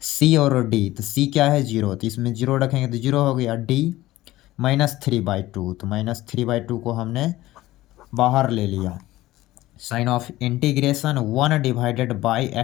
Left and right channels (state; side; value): quieter; right; 16.7 dB